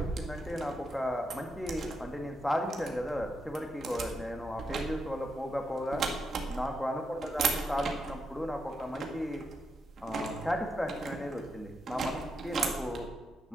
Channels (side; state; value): both; normal; correlation 0.83